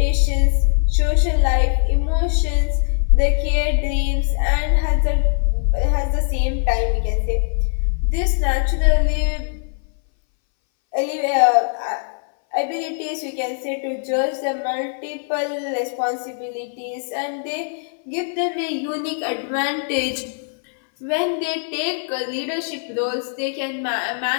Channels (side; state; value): right; silent; 63 dB below the other